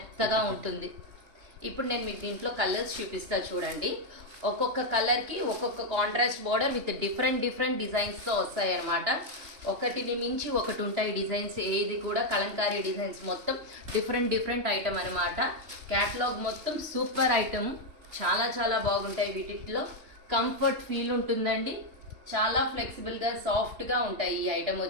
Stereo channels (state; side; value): late; left; 3.2 ms